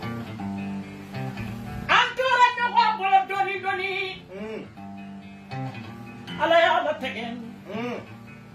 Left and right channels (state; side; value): identical; both; correlation 1.00